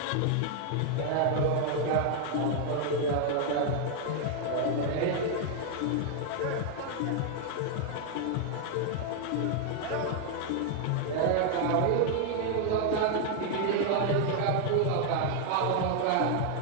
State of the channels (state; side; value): different; both; correlation 0.00